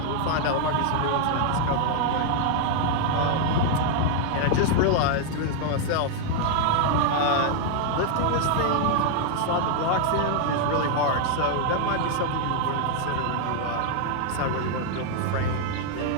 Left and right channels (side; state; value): both; different; correlation 0.00